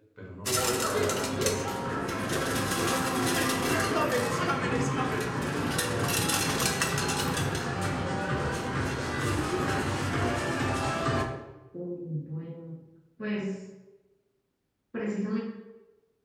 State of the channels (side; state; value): both; identical; correlation 1.00